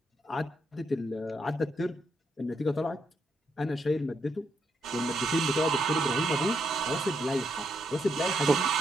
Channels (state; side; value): normal; both; correlation 0.79